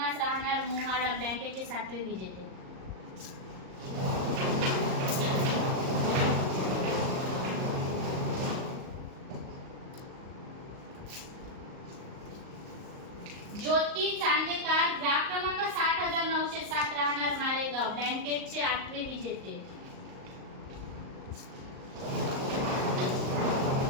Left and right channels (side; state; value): left; late; 38 ms